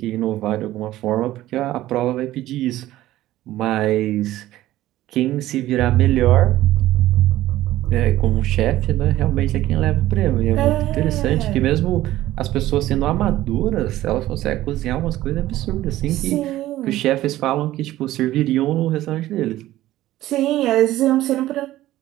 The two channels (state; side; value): quieter; left; 15.1 dB